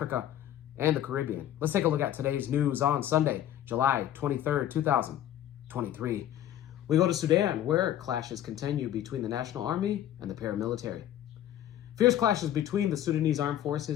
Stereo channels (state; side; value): quieter; right; 11.7 dB